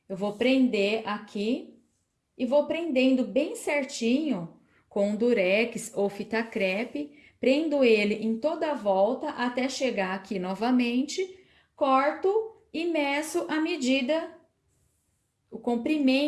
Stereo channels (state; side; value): identical; both; correlation 1.00